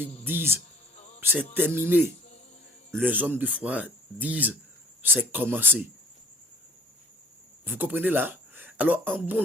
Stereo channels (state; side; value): normal; both; correlation 0.54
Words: disent c'est terminé, les hommes de foi disent c'est commencé. Vous comprenez là? Alors en